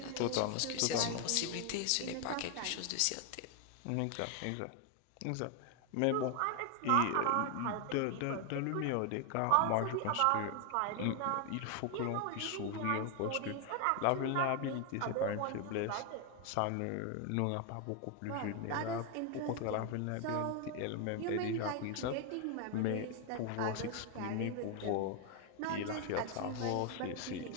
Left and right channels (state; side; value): different; both; correlation 0.00